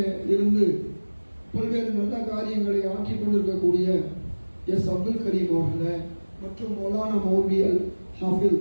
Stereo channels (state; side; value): inverted; both; correlation -1.00